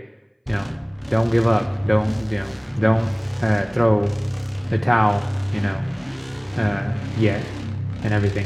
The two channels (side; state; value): both; identical; correlation 1.00